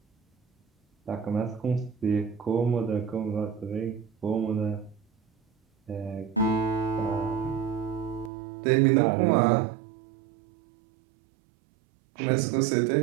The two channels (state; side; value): drops out; left; at 8.3 s